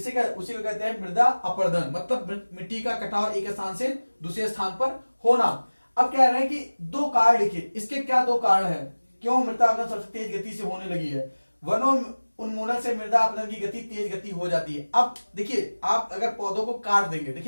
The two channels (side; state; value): both; inverted; correlation -1.00